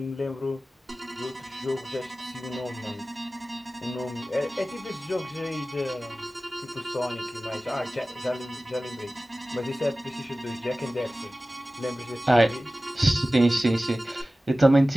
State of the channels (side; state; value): both; normal; correlation 0.96